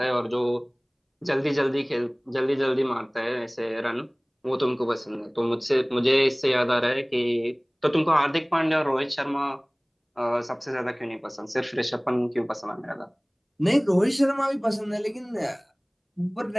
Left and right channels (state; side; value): identical; both; correlation 1.00